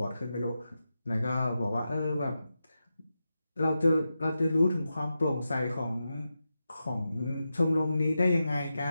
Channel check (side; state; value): both; inverted; correlation -0.90